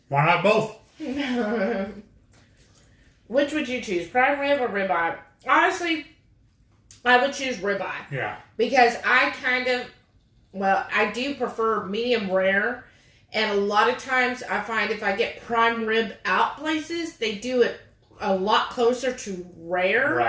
Why not both? Which would you choose, prime rib or ribeye? Honestly, I would choose ribeye. Yeah. Because I do prefer medium rare. And a lot of times I find if I get prime rib out places, they do it a lot closer to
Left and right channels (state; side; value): identical; both; correlation 1.00